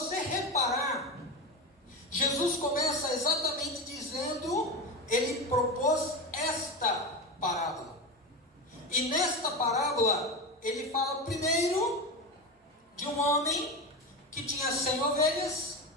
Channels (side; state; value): both; normal; correlation 0.21